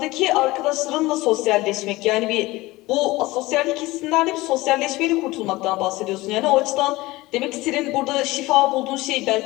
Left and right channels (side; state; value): right; quieter; 19.8 dB